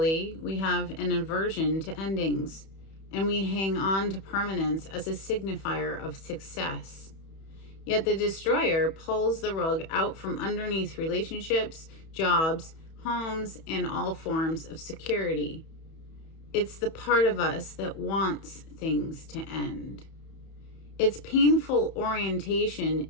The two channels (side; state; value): right; late; 31 ms